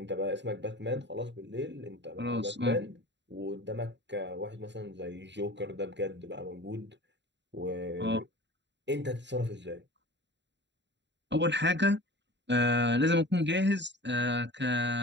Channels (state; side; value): late; left; 0.52 ms